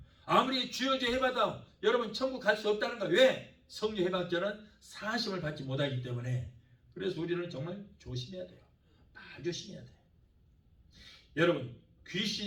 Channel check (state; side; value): identical; both; correlation 1.00